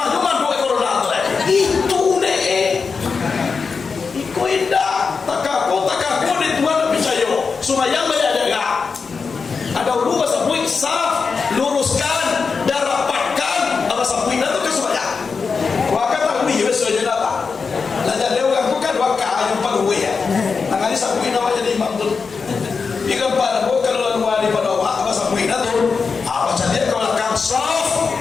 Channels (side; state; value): right; quieter; 5.1 dB